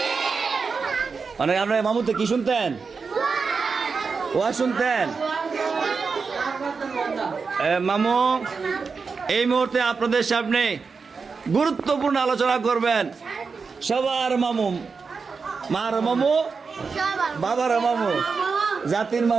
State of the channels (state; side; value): quieter; left; 5.0 dB